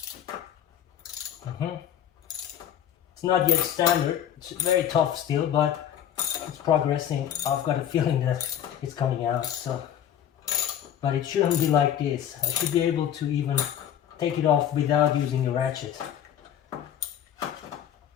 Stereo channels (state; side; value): quieter; right; 10.0 dB